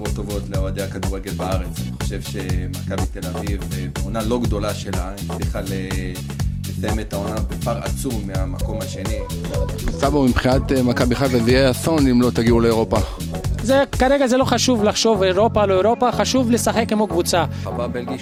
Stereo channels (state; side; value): identical; both; correlation 1.00